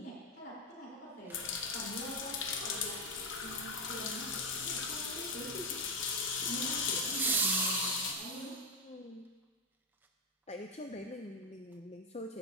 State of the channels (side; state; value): both; normal; correlation 0.08